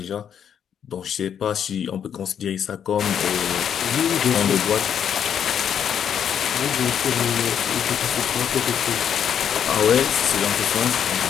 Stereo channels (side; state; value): right; quieter; 8.5 dB